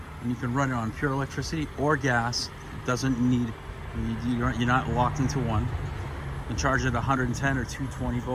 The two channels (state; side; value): identical; both; correlation 1.00